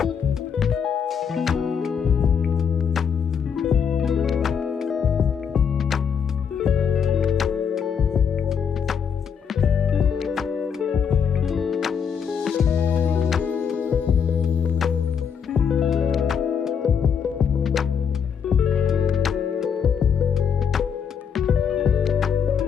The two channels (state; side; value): quieter; right; 7.1 dB